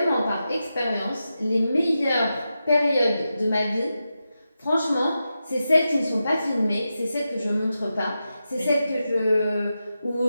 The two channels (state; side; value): inverted; both; correlation -0.90